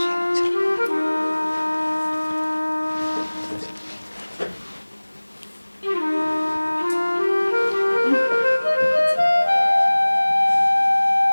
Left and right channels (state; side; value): inverted; both; correlation -1.00